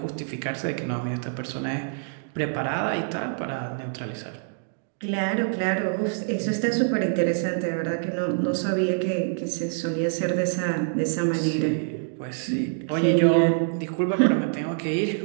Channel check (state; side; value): silent; left; digital silence